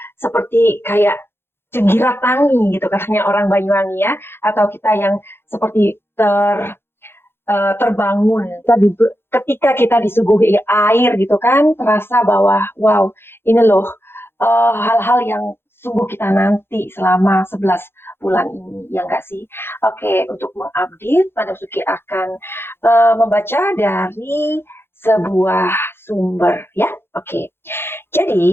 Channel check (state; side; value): late; right; 0.11 ms